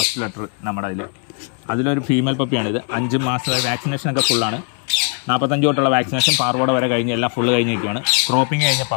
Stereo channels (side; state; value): right; quieter; 39.8 dB